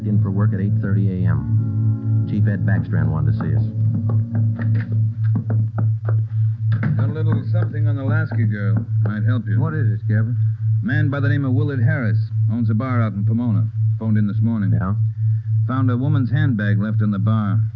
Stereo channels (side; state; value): both; identical; correlation 1.00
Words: in for work at 8:30 a.m. Chief Ed Backstrand wanted to see us. Got a little something on the Lasky girl. Might help you. What is it, Kevin? Man by the name of Willard Harris. Owns a bar out in Pomona. Phoned in this morning. Yeah? Found a woman's handbag left in the bar.